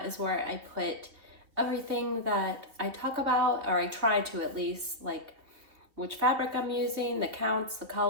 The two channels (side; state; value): left; late; 3.2 ms